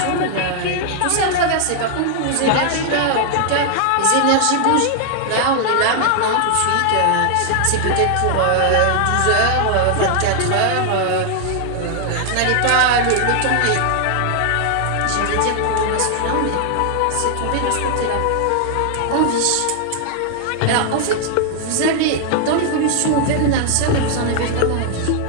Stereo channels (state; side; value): different; both; correlation 0.00